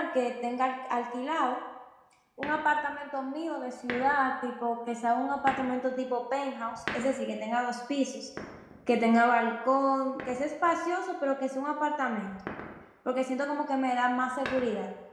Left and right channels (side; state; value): both; identical; correlation 1.00